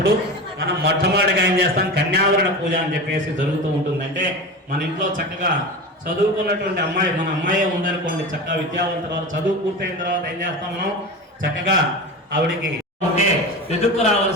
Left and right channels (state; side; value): normal; both; correlation 0.27